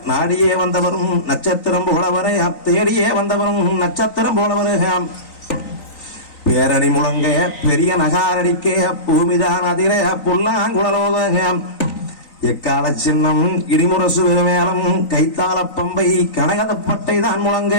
நாடியே வந்தவரும் நட்சத்திரம் போல வர தேடியே வந்தவரும் நட்சத்திரம் போல வர பேரணி முழங்க பெரிய நகாரடிக்க பூமிதான் அதிர புல்லாங்குழலோத எக்கால சின்னம் இடிமுரசு மேளம் கைத்தாள பம்பை கனகதப்பட்டை தான் முழங்க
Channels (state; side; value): late; right; 3.9 ms